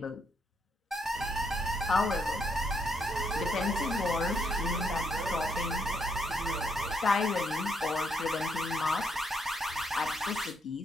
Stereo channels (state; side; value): normal; both; correlation 0.75